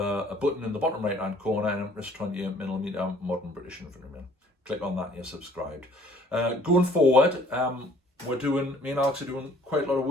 button in the bottom right hand corner, and it's 28mm modern British infantryman. Click on that and you're subscribed. Going forward, me and Alex are doing quite a lot of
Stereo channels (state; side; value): normal; both; correlation 0.56